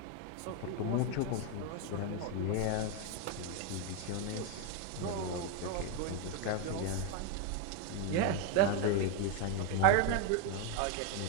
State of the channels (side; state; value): both; different; correlation 0.02